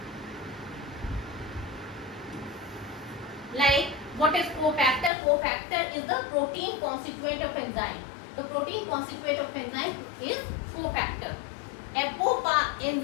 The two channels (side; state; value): right; drops out; at 5.1 s